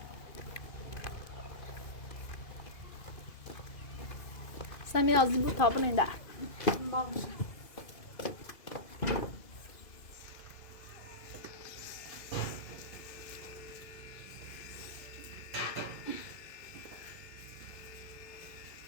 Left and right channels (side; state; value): right; late; 2.5 ms